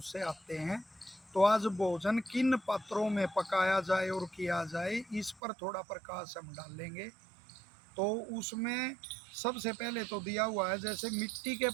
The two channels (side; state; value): left; drops out; at 5.4 s